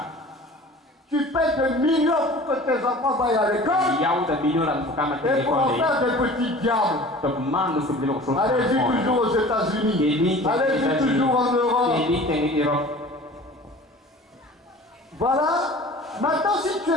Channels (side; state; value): both; normal; correlation 0.43